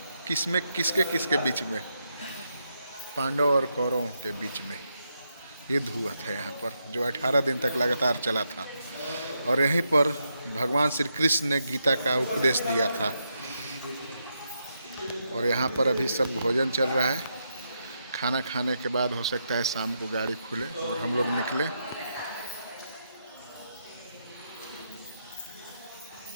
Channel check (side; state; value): both; inverted; correlation -0.82